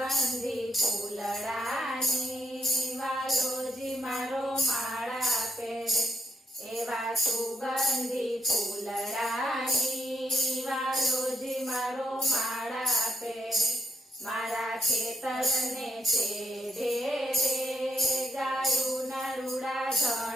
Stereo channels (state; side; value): normal; both; correlation 0.80